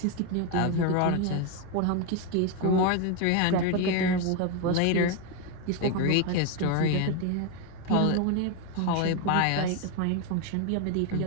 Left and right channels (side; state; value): both; different; correlation 0.02